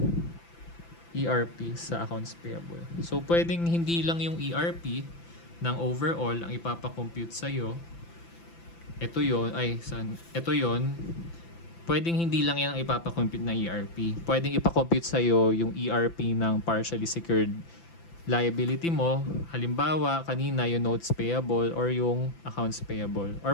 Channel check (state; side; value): late; right; 5.9 ms